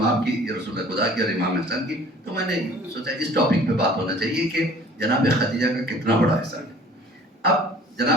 کی، رسول خدا کی اور امام حسن کی، تو میں نے سوچا اس ٹاپک پہ بات ہونا چاہیے کہ جناب خدیجہ کا کتنا بڑا حصہ ہے۔ اب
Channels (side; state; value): both; normal; correlation 0.50